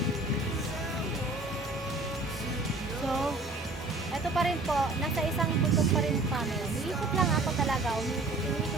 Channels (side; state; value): left; quieter; 3.0 dB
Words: So, eto pa rin po. Nasa isang bundok pa rin kami. Umiikot lang ako talaga.